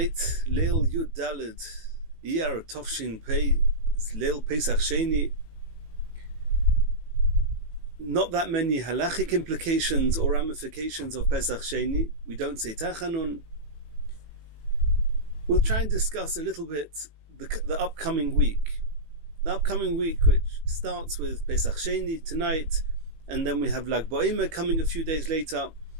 Leil Yud Daled, Iyar Tovshin Pei, it's Leil Pesach Sheni. Not that many halachic implications or ramifications of Pesach Sheni. We don't say Tachanun. We'll try and discuss a little bit the upcoming week. The upcoming week, which starts with Pesach Sheni tonight, and then we have Lag BaOmer coming a few days later.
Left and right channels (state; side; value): late; left; 18 ms